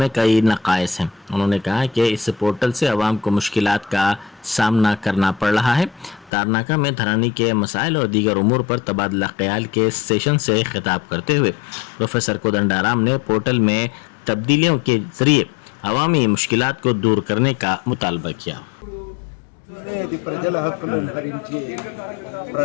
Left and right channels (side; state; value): right; drops out; at 6.3 s